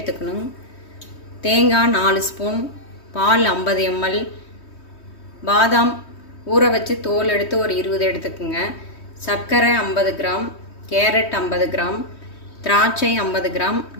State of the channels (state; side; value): late; right; 3.2 ms